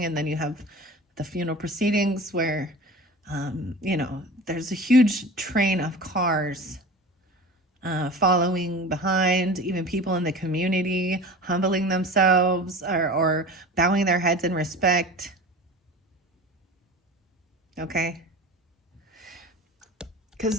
and then you have the funeral proceedings where, you know, there's a huge train of cars following behind, even people in the community humbling themselves or bowing their heads in respect. Okay.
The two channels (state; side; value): normal; both; correlation 0.36